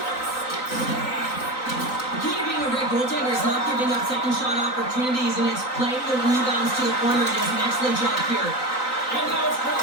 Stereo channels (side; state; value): right; late; 3.9 ms